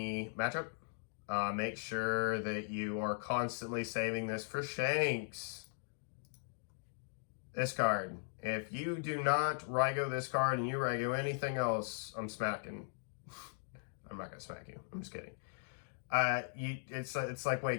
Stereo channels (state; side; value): silent; right; digital silence